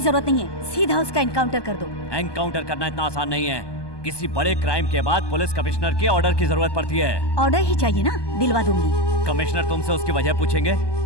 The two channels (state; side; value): late; right; 1.2 ms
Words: जरूरत नहीं है, सीधा उसका एनकाउंटर कर दो। एनकाउंटर करना इतना आसान नहीं है। किसी बड़े क्राइम के बाद पुलिस कमिश्नर के ऑर्डर की जरूरत पड़ती है। ऑर्डर ही चाहिए ना, दिलवा दूंगी। कमिश्नर तुमसे उसकी वजह पूछेंगे